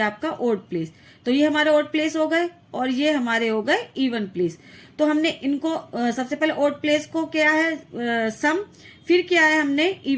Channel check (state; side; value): identical; both; correlation 1.00